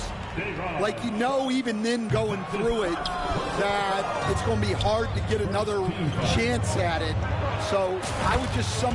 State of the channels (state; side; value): identical; both; correlation 1.00